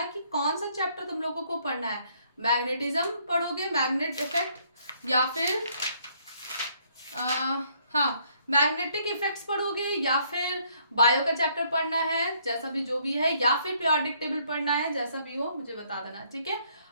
कि कौन सा चैप्टर तुम लोगों को पढ़ना है। मैग्नेटिज्म पढ़ोगे, मैग्नेट इफेक्ट, या फिर हाँ मैग्नेटिक इफेक्ट्स पढ़ोगे, या फिर बायो का चैप्टर पढ़ना है, जैसा भी जो भी है, या फिर पीरियोडिक टेबल पढ़ना है, जैसा भी हो मुझे बता देना, ठीक है?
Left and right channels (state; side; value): inverted; both; correlation -0.67